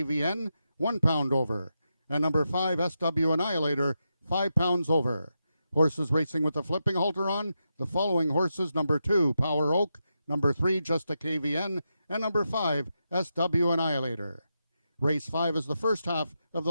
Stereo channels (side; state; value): both; inverted; correlation -0.86